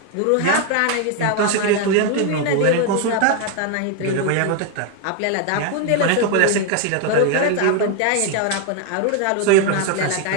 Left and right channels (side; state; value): both; different; correlation 0.01